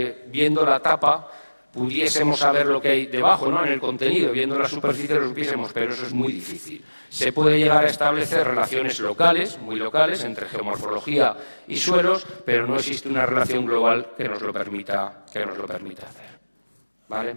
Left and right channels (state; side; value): inverted; both; correlation -1.00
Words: viendo la tapa, pudiésemos saber lo que hay debajo, ¿no? En el contenido, viendo la superficie lo supiésemos, pero eso es muy difícil. Se puede llegar a establecer relaciones locales, muy locales, entre geomorfología y suelos, pero no existe una relación global que nos lo permita hacer. ¿Vale?